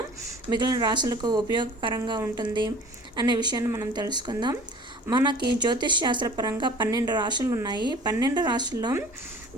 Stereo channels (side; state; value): both; normal; correlation 0.46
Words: మిగిలిన రాశులకు ఉపయోగకరంగా ఉంటుంది అనే విషయాన్ని మనం తెలుసుకుందాం. మనకి జ్యోతిష్ శాస్త్రపరంగా 12 రాశులు ఉన్నాయి. 12 రాశుల్లో